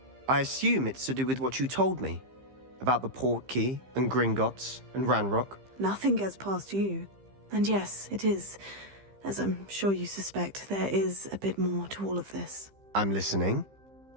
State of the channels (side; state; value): left; late; 15 ms